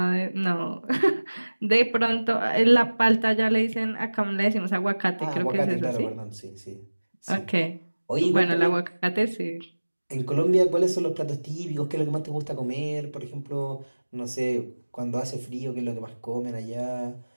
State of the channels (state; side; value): inverted; both; correlation -1.00